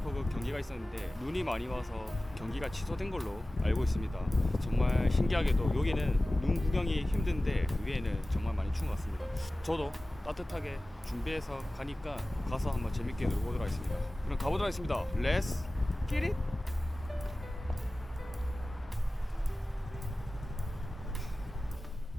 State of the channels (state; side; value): normal; both; correlation 0.97